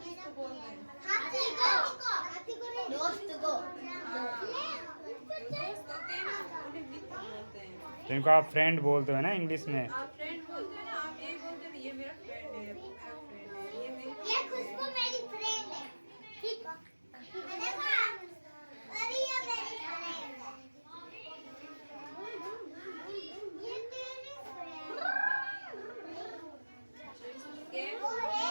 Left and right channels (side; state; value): both; inverted; correlation -1.00